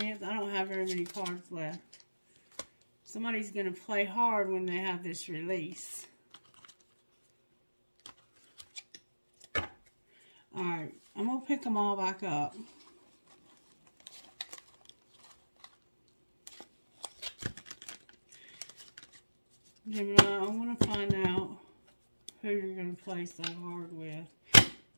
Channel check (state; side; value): inverted; both; correlation -1.00